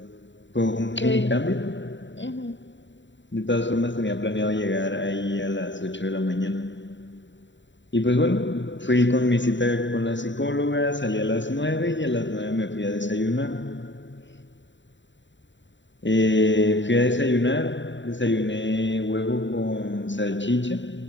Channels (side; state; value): right; late; 0.54 ms